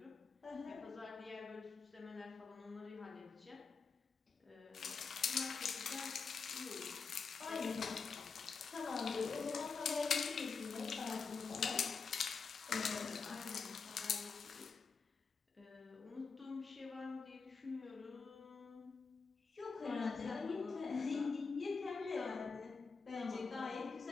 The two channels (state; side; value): quieter; right; 5.0 dB